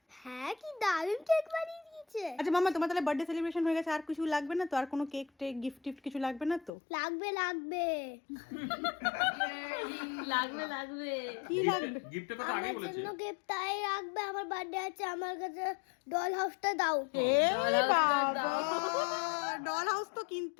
হ্যাঁ কি দারুণ কেক বানিয়ে দিয়েছে। আচ্ছা মামা তোমার তাহলে বার্থডে সেলিব্রেশন হয়ে গেছে, আর কিছু লাগবে না তো? আর কোনো কেক টেক গিফট টিফট কিছু লাগবে না তো? লাগবে লাগবে লাগবে লাগবে। কি লাগবে? গিফটের কথা আগেই আমার বলেছে জন্য গিফট তাই রাখবে। আমার বার্থডে আছে, আমার কাছে ডল হাউসটা দাও। এ বাবা ডল হাউস তো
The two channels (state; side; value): drops out; right; at 6.7 s